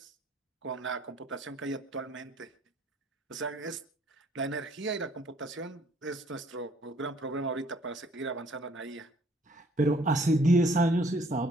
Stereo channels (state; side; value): normal; both; correlation 0.60